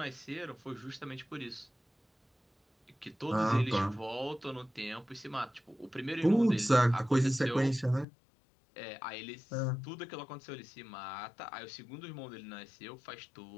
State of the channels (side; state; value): right; drops out; at 8.1 s